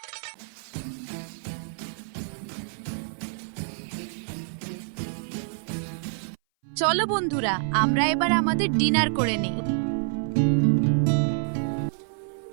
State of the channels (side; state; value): left; silent; 58 dB below the other